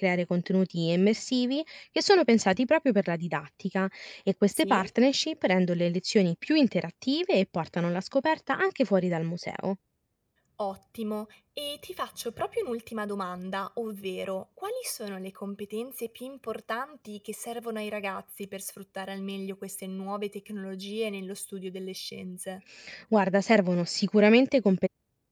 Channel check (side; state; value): both; identical; correlation 1.00